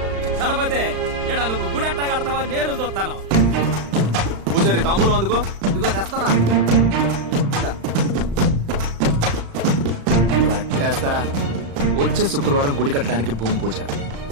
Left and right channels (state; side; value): late; left; 35 ms